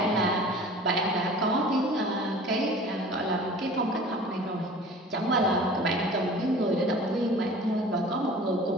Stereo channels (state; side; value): normal; both; correlation 0.43